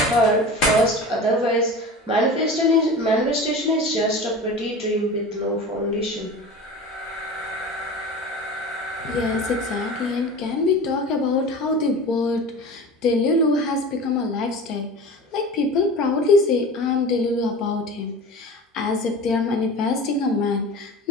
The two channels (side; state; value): both; normal; correlation 0.35